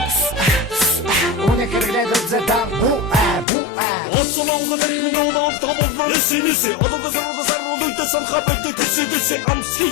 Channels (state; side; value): drops out; right; at 3.5 s